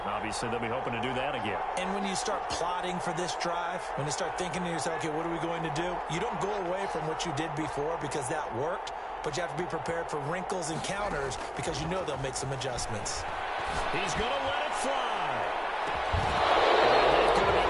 Obviously, they'll be hoping to do that again. And when you start plotting for this drive, when you start thinking to yourself, okay, what are we going to do? You don't go away from what you did before because that worked, but you have to be prepared for wrinkles and counters because you know they'll make some adjustments. He's going to let it fly. It's going to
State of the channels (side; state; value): both; identical; correlation 1.00